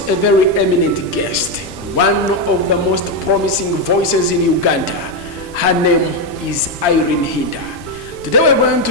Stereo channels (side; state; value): both; normal; correlation 0.06